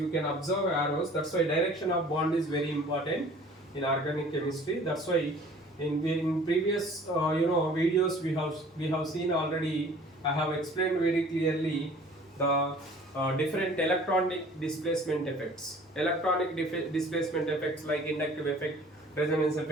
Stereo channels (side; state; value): both; normal; correlation 0.50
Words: can observe arrows. That's why direction of bond is very important in organic chemistry. That's why in previous videos we have seen already. I have explained very clearly the different electronic displacement effects. Electronic displacement effects like inductive effect, resonance